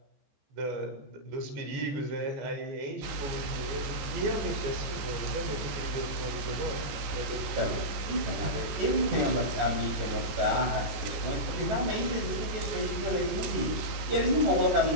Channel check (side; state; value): left; late; 15 ms